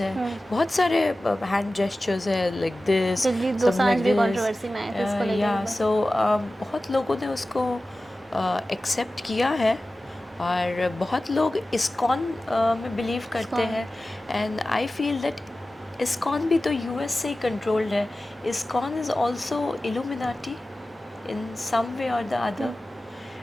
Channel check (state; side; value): normal; both; correlation 0.96